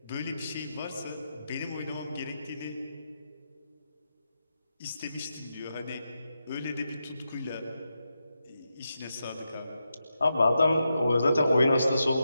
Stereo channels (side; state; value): both; inverted; correlation -0.87